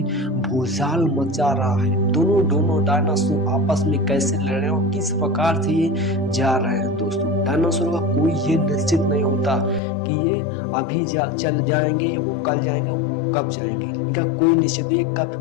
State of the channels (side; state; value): right; drops out; at 9.8 s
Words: भूचाल मचा रहा है। दोनों डायनासोर आपस में कैसे लड़ रहे हैं और किस प्रकार से ये जा रहे हैं। दोस्तों डायनासोर का कोई ये निश्चित नहीं होता कि ये अभी चल जाएंगे, वो कल जाएंगे, वो कब जाएंगे। इनका कोई निश्चित नहीं,